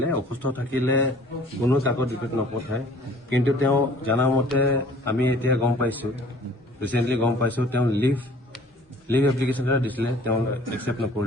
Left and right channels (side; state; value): both; normal; correlation 0.52